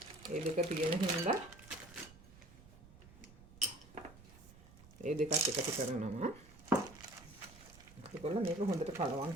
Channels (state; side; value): noise; right; rumble, 20 dB below the sound